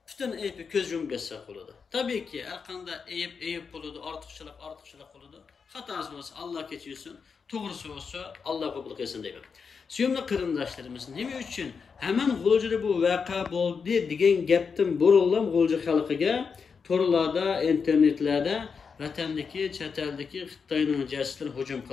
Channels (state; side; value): quieter; right; 5.7 dB